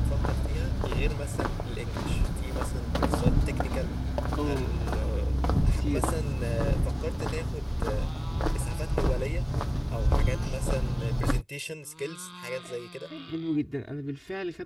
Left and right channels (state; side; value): identical; both; correlation 1.00